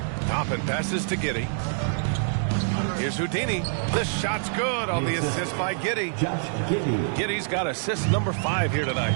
Toppin passes to Giddey. Here's Houdini. The shot's good on the assist by Giddey. Giddey's got assist number 5 here tonight.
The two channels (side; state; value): left; silent; digital silence